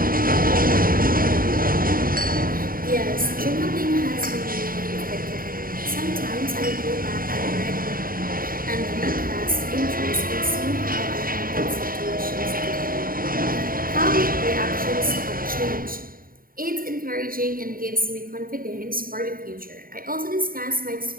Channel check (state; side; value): late; left; 0.41 ms